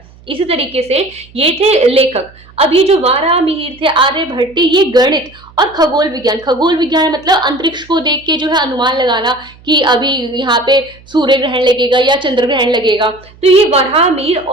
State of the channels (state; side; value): noise; right; hum, 25 dB below the sound